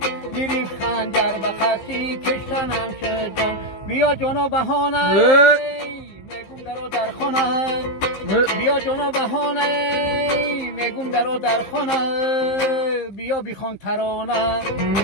گریف خنجر به قصی کشتنم شد جان بیا جانا بهانه میگم درو در خانه بیا جانا بهانه میگم درو در خانه بیا بیخوان ترانه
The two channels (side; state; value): right; late; 15 ms